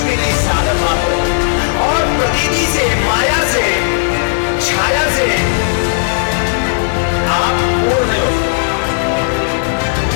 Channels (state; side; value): silent; right; digital silence